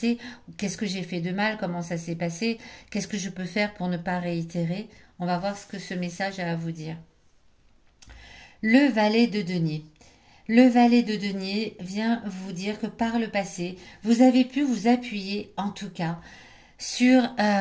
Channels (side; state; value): both; identical; correlation 1.00